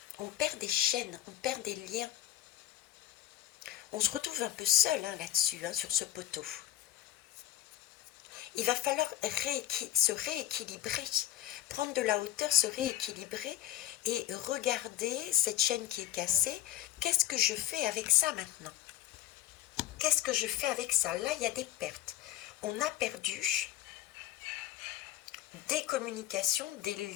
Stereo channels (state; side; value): quieter; right; 13.5 dB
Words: On perd des chaînes, on perd des liens. On se retrouve un peu seul là-dessus, sur ce poteau. Il va falloir se rééquilibrer, prendre de la hauteur, se rééquilibrer et regarder cette chaîne qui est cassée. Qu'est-ce que je fais avec ça maintenant? Qu'est-ce que je fais avec ça? Là, il y a des pertes. On a perdu des communications, des